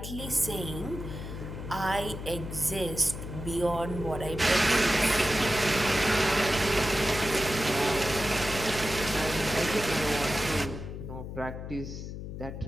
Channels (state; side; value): noise; left; hum, 8 dB below the sound